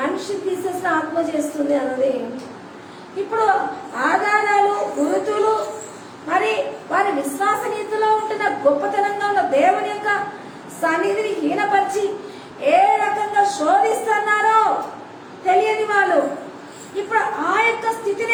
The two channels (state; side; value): identical; both; correlation 1.00